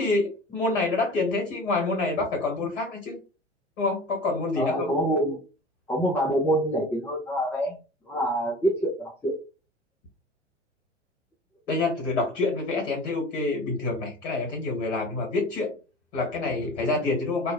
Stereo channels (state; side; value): normal; both; correlation 0.40